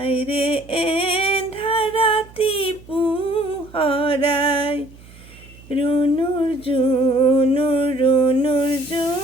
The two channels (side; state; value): right; noise; hum, 22 dB below the sound